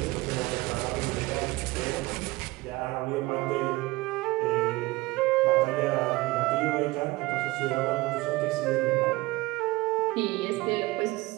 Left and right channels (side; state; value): left; quieter; 20.9 dB